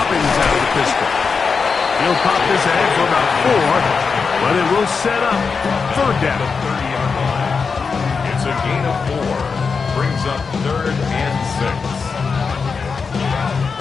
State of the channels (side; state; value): right; quieter; 5.2 dB